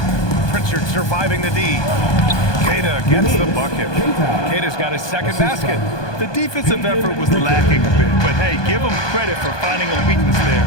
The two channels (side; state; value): right; late; 1.2 ms